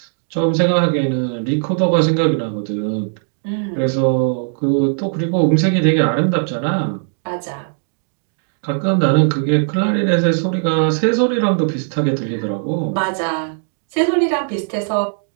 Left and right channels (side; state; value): left; silent; 64 dB below the other